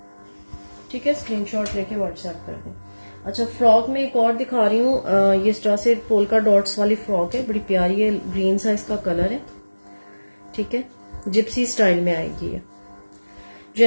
ठीक है। स्क्रीनशॉट लेके व्हाट्सएप कर दें। अच्छा, फ्रॉक में एक और दिखा रही हूँ। ये इस तरह से पोल्का डॉट्स वाली फ्रॉक है, बड़ी प्यारी है, ग्रीन सा इसका कलर है, ठीक है। जिप्सी स्टाइल में आएगी ये।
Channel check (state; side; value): inverted; both; correlation -1.00